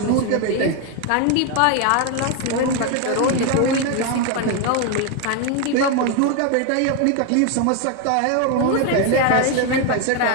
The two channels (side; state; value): both; different; correlation 0.01